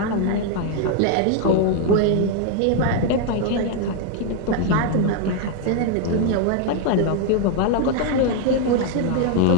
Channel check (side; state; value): both; different; correlation 0.01